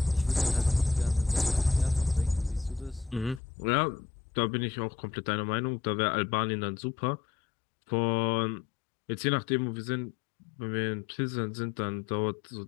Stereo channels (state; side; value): drops out; right; at 3.4 s